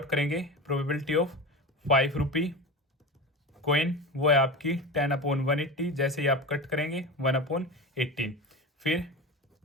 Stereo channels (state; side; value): normal; both; correlation 0.26